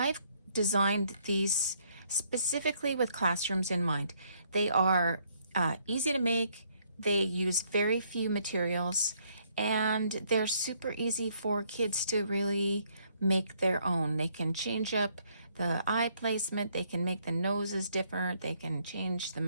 designed these specifically with classrooms in mind. They are easy to make, they use very few materials, and they're super easy for kids to really make their own. They can change up the eye placement, they can make the noses different, they can change the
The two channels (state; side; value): inverted; both; correlation -0.68